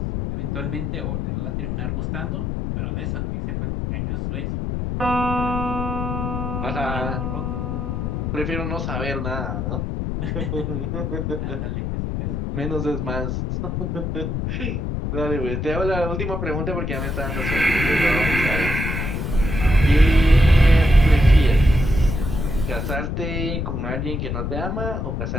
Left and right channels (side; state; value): left; noise; rumble, 2 dB below the sound